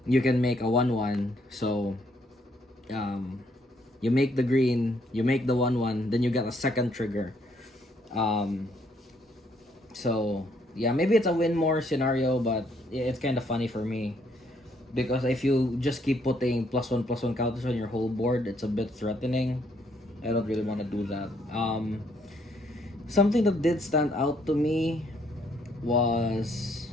you can make a 1/1. So you make the green, you make the 1/1, then you get a second trigger. So yeah, maybe it's a win more scenario, but it's kind of funny for me because if you just keep putting +1/+1 counters on your whole board, it's a bit threatening. I don't really want to do that. Something that did stand out to me was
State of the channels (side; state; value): both; normal; correlation 0.69